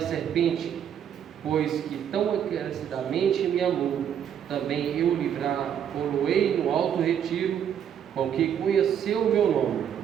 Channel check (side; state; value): left; quieter; 9.0 dB